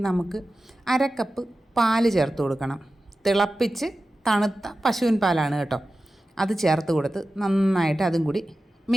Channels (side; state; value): both; normal; correlation 0.94